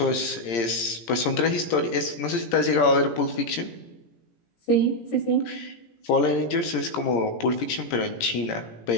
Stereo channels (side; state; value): right; late; 17 ms